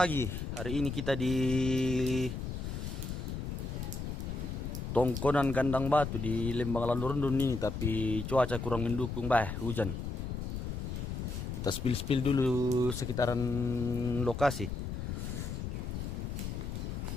Hari ini kita di Tongkonan Kandang Batu di Lembang Landurundun ini, tapi cuaca kurang mendukung, hujan. Kita spill dulu sekitaran lokasi.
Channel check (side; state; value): left; noise; rumble, 4 dB below the sound